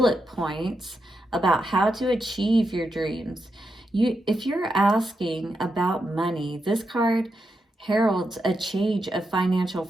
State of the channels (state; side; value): normal; both; correlation 0.85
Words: points about how to achieve your dreams. If you're asking about money, this card heralds a change of financial